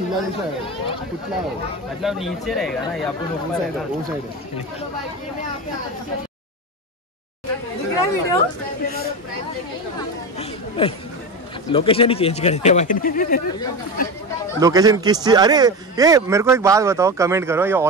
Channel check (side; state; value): both; normal; correlation 0.21